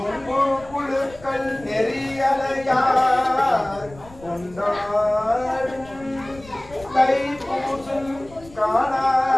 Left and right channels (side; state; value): left; noise; rumble, 21 dB below the sound